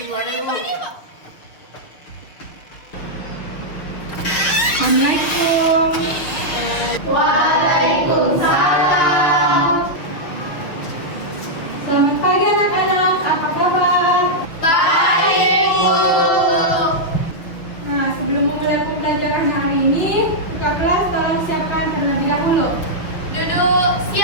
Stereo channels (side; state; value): right; late; 6.2 ms